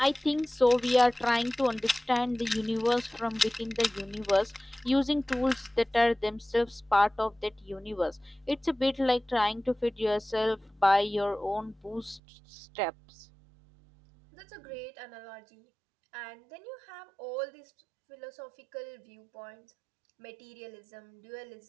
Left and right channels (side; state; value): left; drops out; at 12.2 s